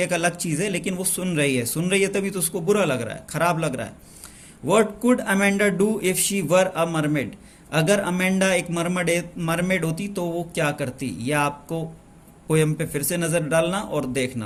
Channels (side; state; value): both; identical; correlation 1.00